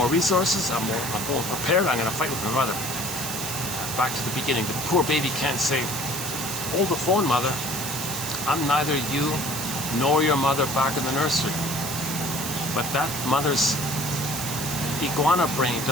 resources, I'm more prepared, I'm going to fight with my mother. Back to the beginning, the poor baby can't say, hold the phone, mother. I'm neither you nor your mother back in the nursery. But that mother's iguana brain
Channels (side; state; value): right; noise; hiss, 5 dB below the sound